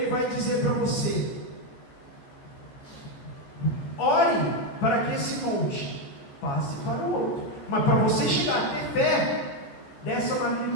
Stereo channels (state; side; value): late; right; 14 ms